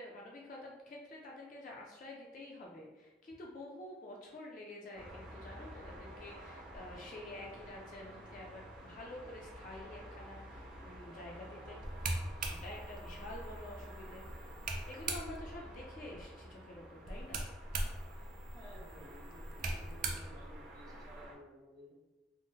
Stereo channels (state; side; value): normal; both; correlation 0.62